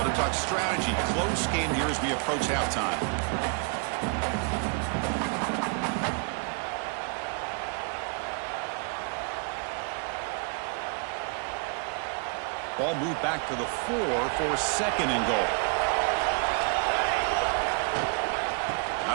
to talk strategy. Close game here as we approach halftime. Ball moved back to the 4 for 2nd and goal.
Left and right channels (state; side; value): quieter; left; 38.8 dB